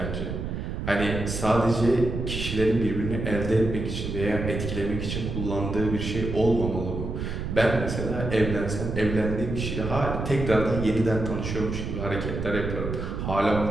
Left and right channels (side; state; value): right; noise; rumble, 4 dB below the sound